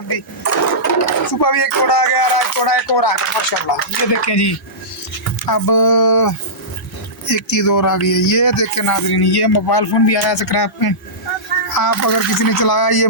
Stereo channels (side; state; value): both; normal; correlation -0.17